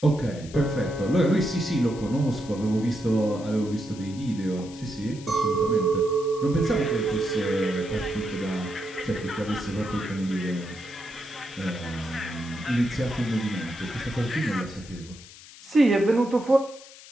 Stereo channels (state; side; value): noise; left; hiss, 19 dB below the sound